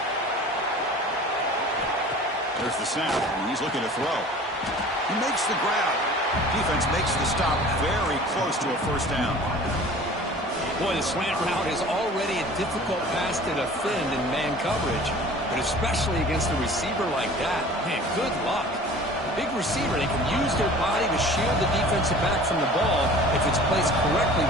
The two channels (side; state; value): both; normal; correlation 0.44